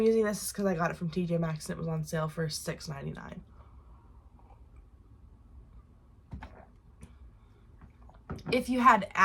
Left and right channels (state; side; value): identical; both; correlation 1.00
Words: using this is because I got it from TJ Maxx and it was on sale for $6.99. If you had